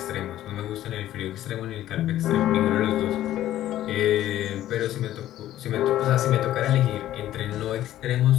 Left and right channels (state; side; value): quieter; right; 13.2 dB